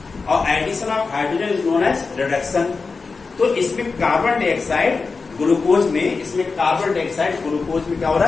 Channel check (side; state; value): right; quieter; 4.4 dB